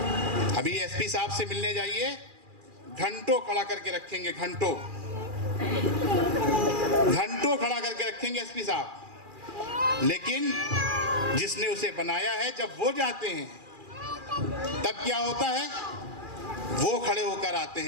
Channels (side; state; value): left; late; 2.4 ms